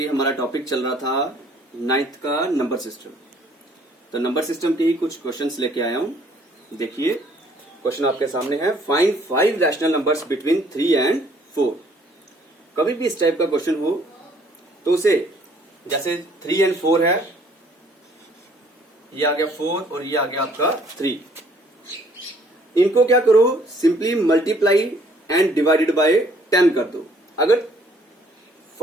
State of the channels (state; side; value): normal; both; correlation 0.61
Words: हमारा टॉपिक चल रहा था नाइन्थ का नंबर सिस्टम, तो नंबर सिस्टम के ही कुछ क्वेश्चंस लेके आया हूं। देखिए क्वेश्चन आपके सामने है, find 5 rational numbers between 3 and 4। कभी भी इस टाइप का क्वेश्चन हो तो उसे, जैसे 3 एंड 4 है, ये आ गया 4 और ये आ गया आपका 3, इनको क्या करो, simply multiply and divided by 10 कर दो। अगर